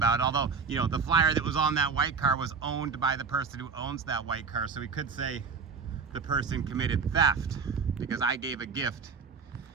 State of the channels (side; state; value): left; quieter; 5.5 dB